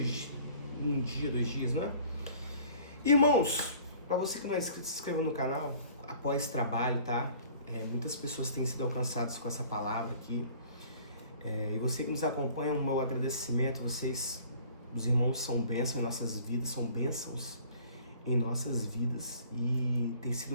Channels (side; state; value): both; inverted; correlation -0.51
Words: um dia, 2 dias, não é? Irmãos, para você que não é inscrito, se inscreva no canal, apoie esse trabalho, tá? Muitas pessoas têm sido alcançadas com essa palavra aqui. E você que nos acompanha, o meu agradecimento. Vocês, os irmãos, são bênçãos em nossas vidas, são bênçãos em nossas vidas. E tem sido